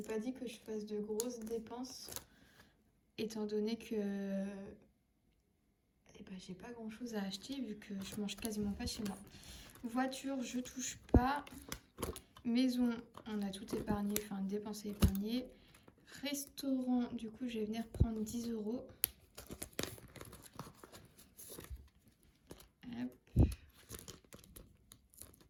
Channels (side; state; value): both; identical; correlation 1.00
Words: pas dit que je fasse de grosses dépenses, étant donné que et ben j'ai pas grand chose à acheter vu que je mange quasiment pas chez moi. Voiture, je touche pas. Maison, on a tout épargné, enfin dépensé, épargné. Restaurant, du coup je vais venir prendre 10 €. Hop.